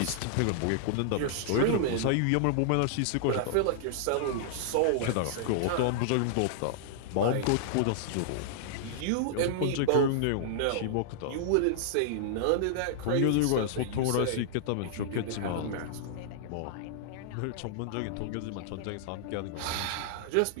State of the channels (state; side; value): different; both; correlation -0.01